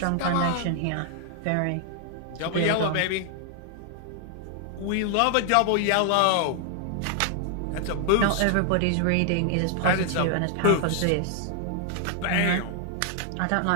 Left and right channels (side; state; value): both; different; correlation 0.00